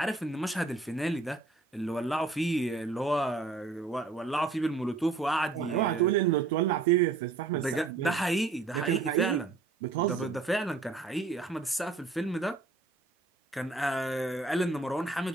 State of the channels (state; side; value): quieter; left; 3.8 dB